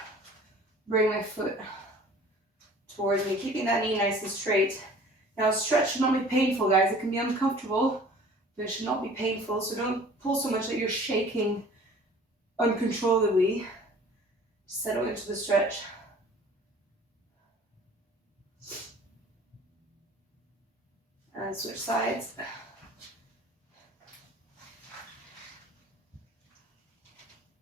bring my foot towards me, keeping that knee nice and straight. Now, stretch should not be painful, guys. It can be uncomfortable, but it should not be painful. So don't pull so much that you're shaking uncontrollably. Settle into the stretch. And switch sides.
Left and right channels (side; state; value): both; normal; correlation 0.48